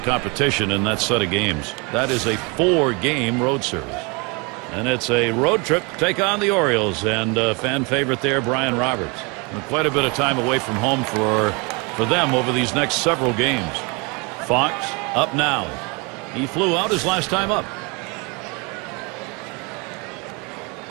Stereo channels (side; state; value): left; quieter; 29.9 dB